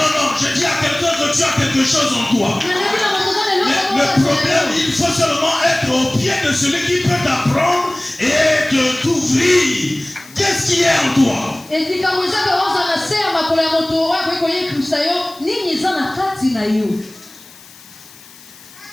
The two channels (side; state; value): left; noise; hiss, 22 dB below the sound